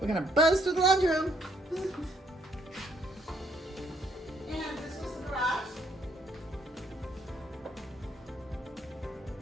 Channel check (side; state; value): both; normal; correlation 0.69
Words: gonna buzz through the laundry room. And this was the garage.